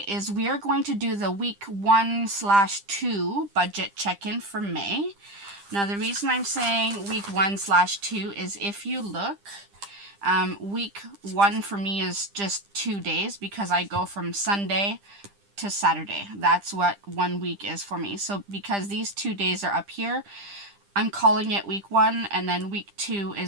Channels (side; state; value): left; late; 10 ms